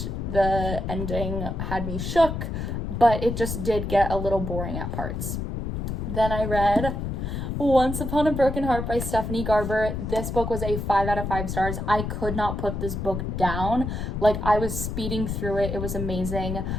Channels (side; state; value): left; noise; rumble, 3 dB below the sound